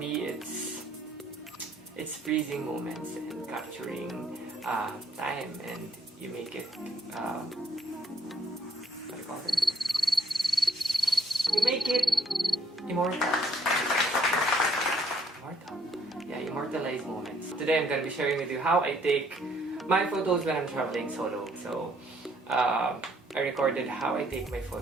it's freezing moments and capturing time, and you make it what do you call it? You make it immortal. Yeah, immortalize moments. Today I'm gonna be sharing with you how I take my photos when I'm traveling solo. So I recorded how I take my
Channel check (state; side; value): normal; both; correlation 0.66